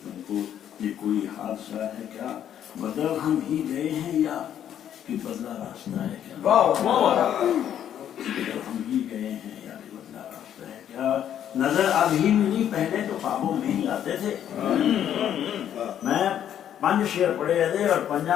तुमको, ये कोई हादसा है क्या? बदल हम ही गए हैं या कि बदला रास्ता है क्या? बदल हम ही गए हैं या कि बदला रास्ता है क्या? नजर अभी मिली, पहले तो ख्वाबों में ही आते थे। मैं 5 शेर पढ़े थे और पंजा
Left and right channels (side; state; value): right; quieter; 10.1 dB